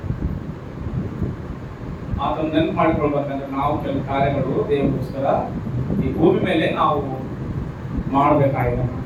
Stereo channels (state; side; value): identical; both; correlation 1.00